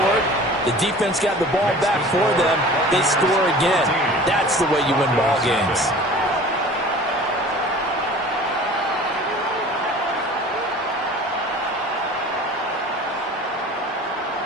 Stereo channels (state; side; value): normal; both; correlation 0.43